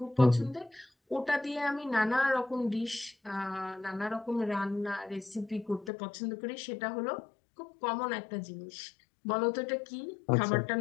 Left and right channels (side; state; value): right; drops out; at 5.9 s